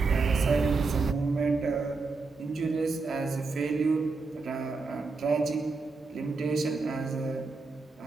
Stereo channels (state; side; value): quieter; left; 4.0 dB